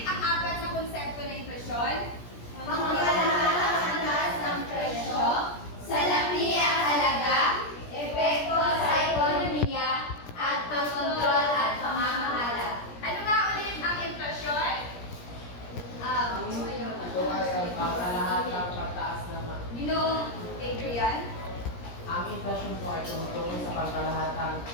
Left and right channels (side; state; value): right; late; 17 ms